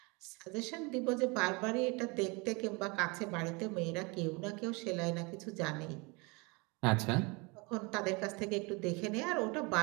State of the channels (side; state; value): left; quieter; 28.0 dB